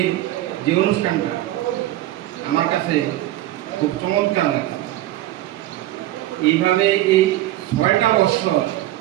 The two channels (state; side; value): quieter; left; 15.1 dB